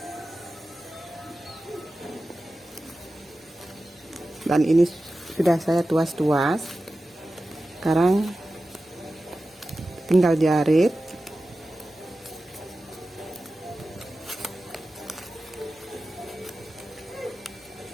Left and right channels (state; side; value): normal; both; correlation 0.94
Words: Dan ini sudah saya tuas-tuas. Sekarang tinggal jarit.